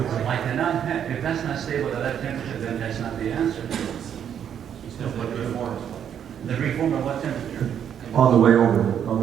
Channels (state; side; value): quieter; left; 8.9 dB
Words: cannot have, if that's not stable at that temperature, then that's not the answer. The reform at what temperature? On the way